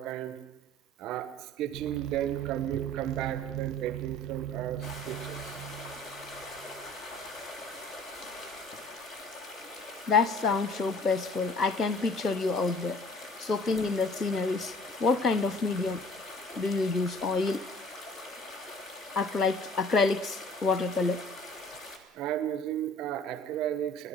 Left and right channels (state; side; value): normal; both; correlation 0.50